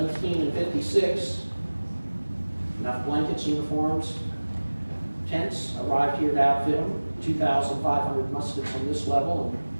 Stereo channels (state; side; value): inverted; both; correlation -1.00